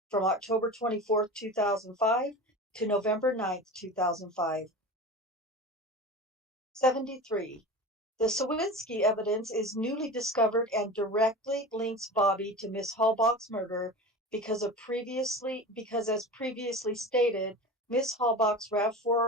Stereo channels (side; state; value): both; normal; correlation 0.32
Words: from October 24th, 2005 to November 9th, 2005. 73. The Sawinski evidence is newly discovered and directly links Bobby to Miss Halbach's murder because as previously stated, Miss Halbach's